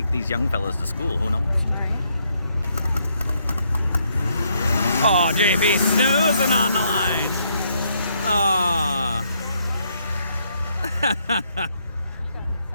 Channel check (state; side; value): inverted; both; correlation -0.73